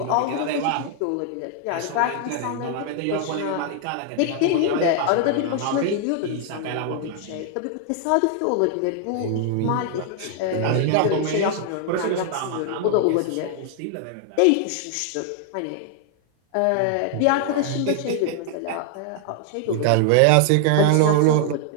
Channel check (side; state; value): both; different; correlation 0.00